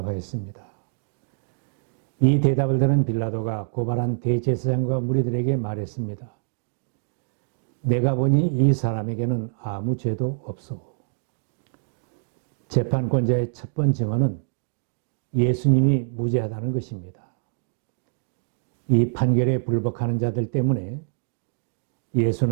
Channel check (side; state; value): left; silent; digital silence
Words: 이 대답을 들은 빌라도가 고발한 대제사장과 무리들에게 말했습니다. 내가 보니 이 사람에게는 아무 죄도 없소. 재판권자의 첫 번째 증언은 예수님이 무죄하다는 것입니다. 이 판결에 불복하는 자들 때문에